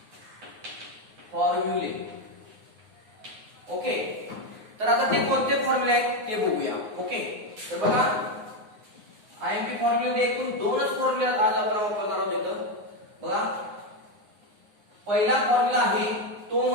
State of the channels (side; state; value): left; late; 9.6 ms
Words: फॉर्म्युले ओके तर आता ते कोणते फॉर्म्युले आहेत ते बघूया ओके तर बघा आयएमपी फॉर्म्युले एकूण दोनच फॉर्म्युले आज आपण वापरणार आहोत इथं बघा पहिला फॉर्म्युला आहे तो